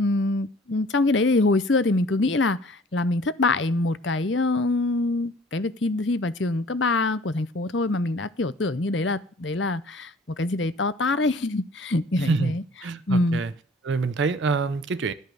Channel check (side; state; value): both; normal; correlation 0.51